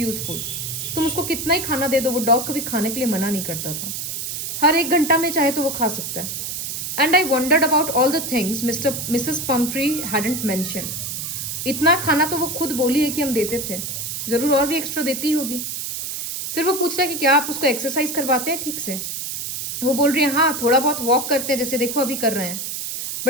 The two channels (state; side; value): noise; right; hiss, 5 dB below the sound